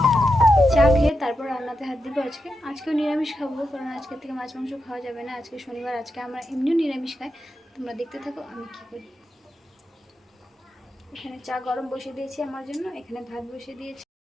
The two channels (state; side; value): normal; both; correlation 0.87